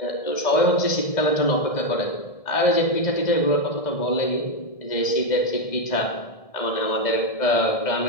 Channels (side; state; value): right; late; 1.6 ms